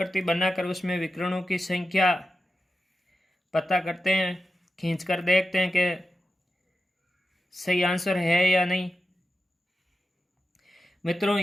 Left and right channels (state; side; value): normal; both; correlation 0.92